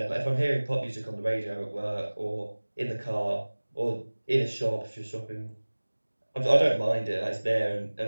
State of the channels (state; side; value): inverted; both; correlation -1.00